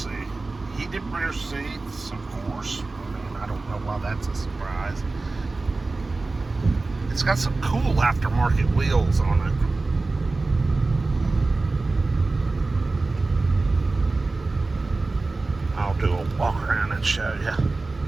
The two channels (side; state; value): left; quieter; 3.5 dB